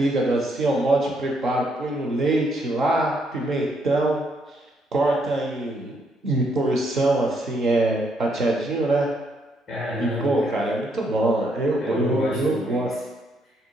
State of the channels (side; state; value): both; normal; correlation 0.73